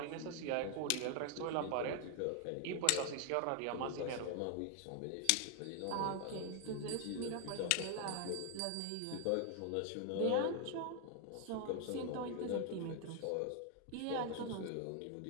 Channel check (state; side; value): different; both; correlation 0.00